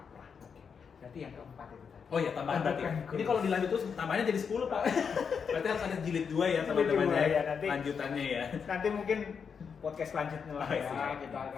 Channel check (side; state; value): right; quieter; 6.4 dB